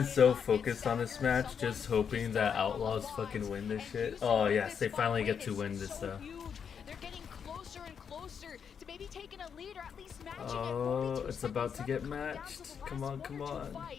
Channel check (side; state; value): right; quieter; 7.2 dB